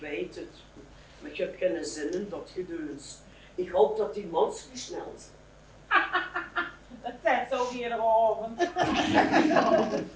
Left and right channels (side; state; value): both; identical; correlation 1.00